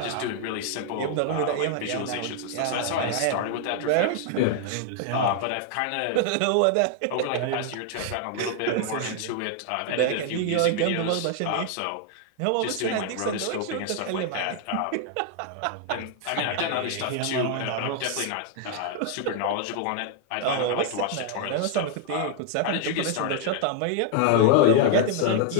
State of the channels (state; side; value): different; both; correlation 0.00